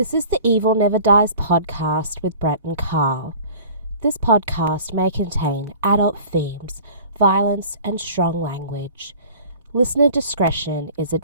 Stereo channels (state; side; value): inverted; both; correlation -0.44